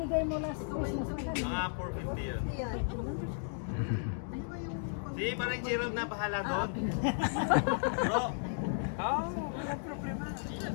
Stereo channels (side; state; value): right; silent; digital silence